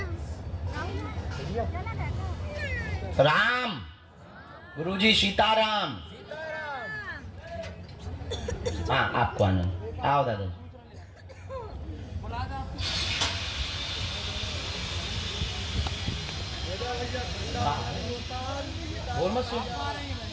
राम गुरुजी, सीताराम। हाँ आपको आनंद, आओ दादाजी। बोल मत सुन।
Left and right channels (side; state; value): both; identical; correlation 1.00